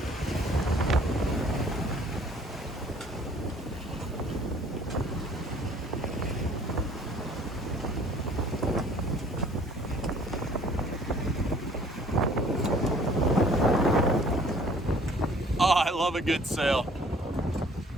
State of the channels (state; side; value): normal; both; correlation 0.55